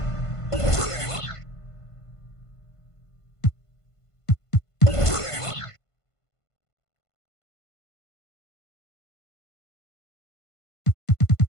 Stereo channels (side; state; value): right; late; 1.5 ms